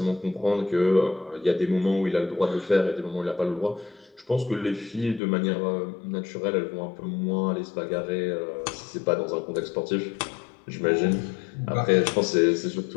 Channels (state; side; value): drops out; right; at 5.2 s